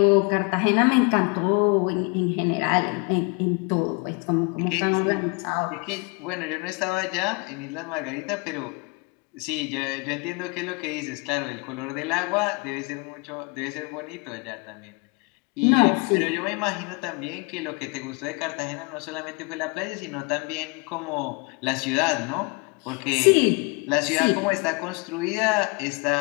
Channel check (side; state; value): right; quieter; 30.0 dB